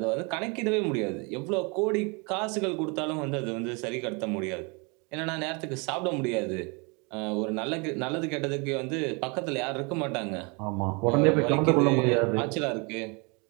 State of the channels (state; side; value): quieter; left; 31.1 dB